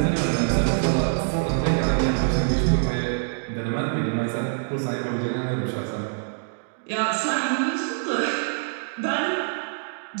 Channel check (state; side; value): silent; left; digital silence